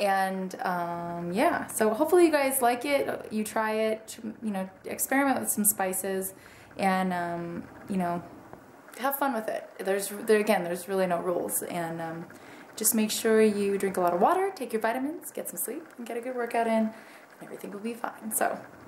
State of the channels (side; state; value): both; identical; correlation 1.00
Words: yeah, so hopefully you guys like it, you try it, you know, experiment with some spices, and you know, have fun with it. Again, there's really no rules, and just make sure you drink a lot of water, take your vitamins, get some sleep, and get a good workout in, and everything will be fine. So,